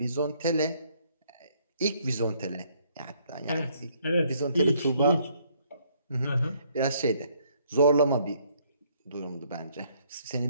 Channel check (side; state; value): both; inverted; correlation -0.67